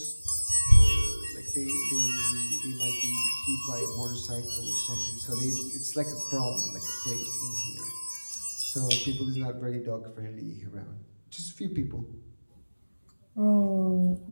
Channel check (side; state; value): both; inverted; correlation -1.00